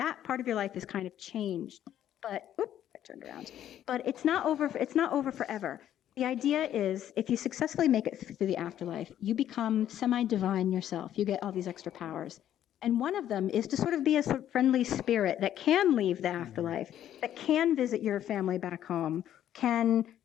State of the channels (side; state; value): right; quieter; 11.2 dB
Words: part of your life is kind of changed. But, I turned around. But it's not over forever. The idea is if you successfully make it through the afterlife, you become semi-divine yourself. You get all these extra powers. And one of them is to sort of be a sort of friendly spirit that can leave the afterlife, that can visit your family back home, can